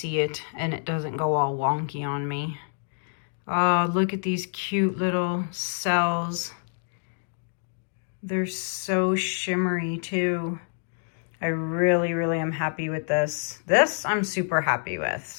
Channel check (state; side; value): silent; right; digital silence